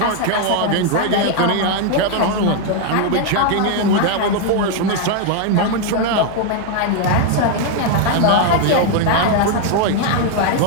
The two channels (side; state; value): both; different; correlation 0.00